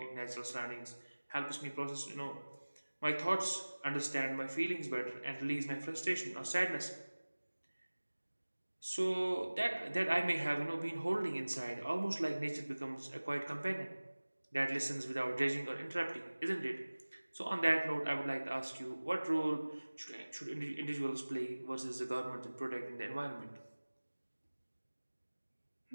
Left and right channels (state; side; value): inverted; both; correlation -1.00